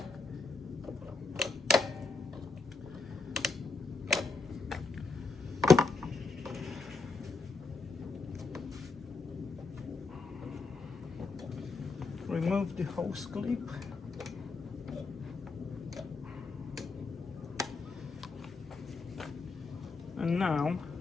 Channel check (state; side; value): quieter; right; 3.9 dB